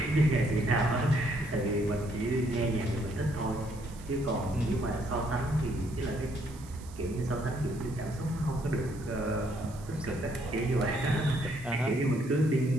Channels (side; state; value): right; noise; hiss, 21 dB below the sound